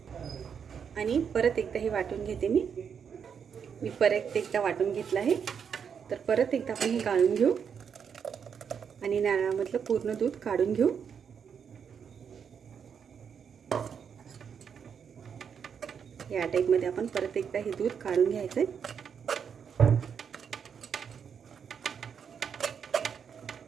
आणि परत एकदा हे वाटून घेते। मी परत एकदा वाटून घेतलं आहे। तर परत एकदा आपण हे गाळून घेऊ आणि नारळामधलं पूर्ण दूध काढून घेऊ। या टाइप मध्ये आपण परत एकदा हे दूध काढून घ्यायचं आहे।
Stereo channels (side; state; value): left; quieter; 7.1 dB